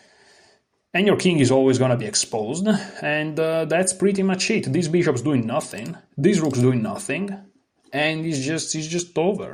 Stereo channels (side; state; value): both; identical; correlation 1.00